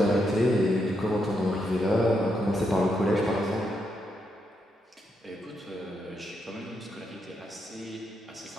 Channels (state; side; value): normal; both; correlation 0.81